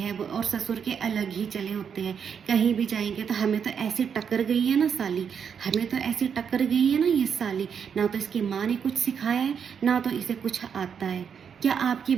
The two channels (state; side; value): quieter; left; 7.2 dB